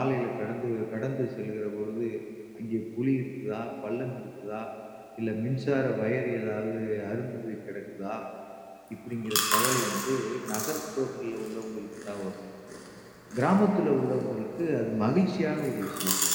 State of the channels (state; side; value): identical; both; correlation 1.00